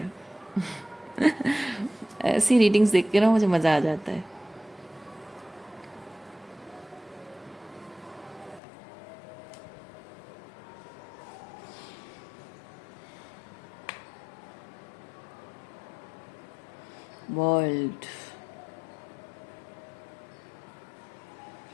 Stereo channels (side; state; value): right; drops out; at 8.6 s